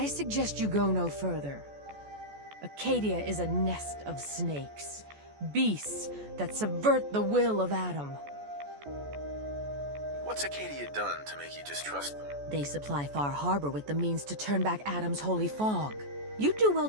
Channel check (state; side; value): late; left; 14 ms